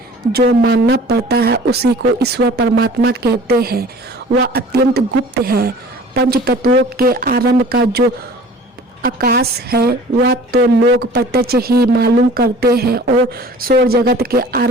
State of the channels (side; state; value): both; normal; correlation 0.46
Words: जो मानना पड़ता है उसी को ईश्वर परमात्मा कहते हैं। वह अत्यंत गुप्त है। पंच तत्वों के आरंभ का जो आकाश है वह तो लोग प्रत्यक्ष ही मालूम करते हैं और सौर जगत के